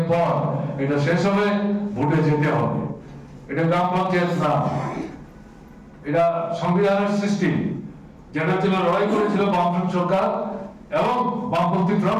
পর এটা শেষ হবে, ভোটে যেতে হবে। এটা গ্রাম পঞ্চায়েত না, এটা সংবিধানের সৃষ্টি, যেটা ছিল লড়াই করেছিল বামফ্রন্ট সরকার এবং বামপন্থী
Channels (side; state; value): both; identical; correlation 1.00